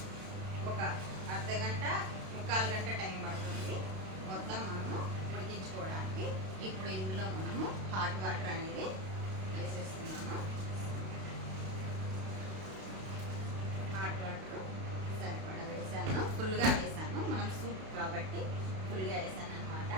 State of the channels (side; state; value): left; late; 32 ms